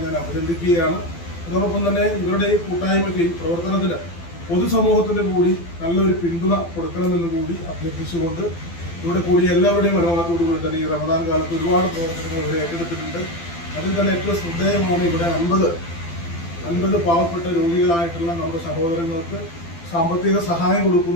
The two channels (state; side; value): late; right; 12 ms